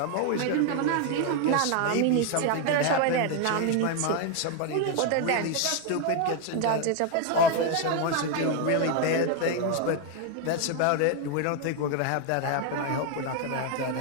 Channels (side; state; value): both; different; correlation 0.01